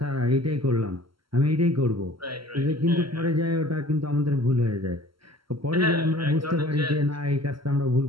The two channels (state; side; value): late; left; 0.74 ms